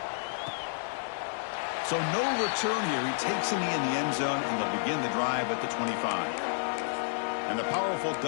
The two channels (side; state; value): right; silent; digital silence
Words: So no return here. He takes him in the end zone, and they'll begin the drive at the 25. And the powerful